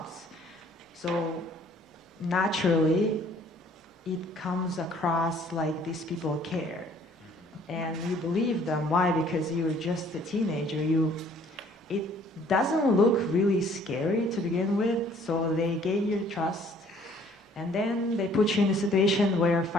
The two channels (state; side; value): normal; both; correlation 0.58